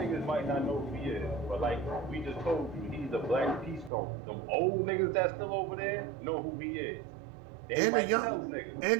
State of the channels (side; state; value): left; drops out; at 3.9 s